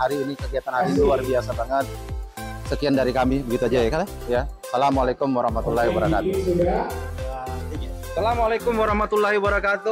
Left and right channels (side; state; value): both; identical; correlation 1.00